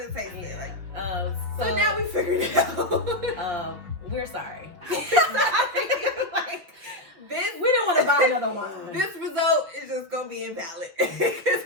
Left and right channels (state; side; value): late; left; 5.6 ms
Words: tastes like. So now we figured it out. We're sorry. We didn't want to buy another wine. This result is just gonna be invalid.